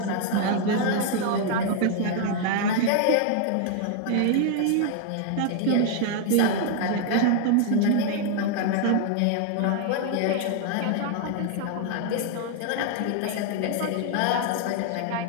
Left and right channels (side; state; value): both; different; correlation 0.00